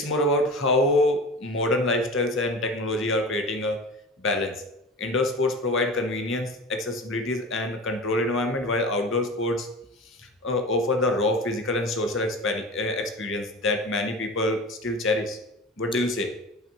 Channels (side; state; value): both; normal; correlation 0.33